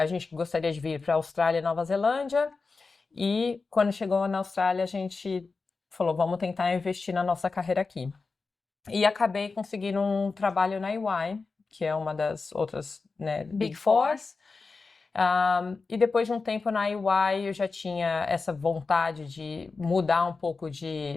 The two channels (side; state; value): right; quieter; 4.2 dB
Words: gente gostaria de vir para a Austrália e Nova Zelândia, e quando chegou na Austrália a gente falou, vamos tentar investir na nossa carreira aqui. E acabei conseguindo um trabalho na EY, que é uma das outras, né, Big Fours. E depois de um tempo na EY eu já tinha essa vontade de mudar um pouco